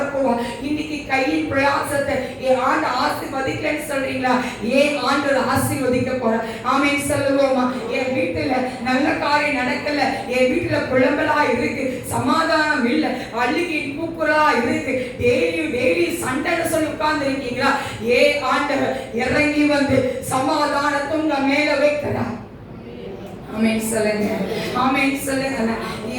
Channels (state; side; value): identical; both; correlation 1.00